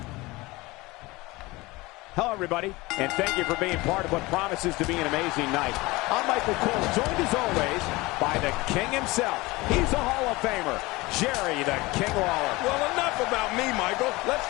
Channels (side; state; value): right; quieter; 21.8 dB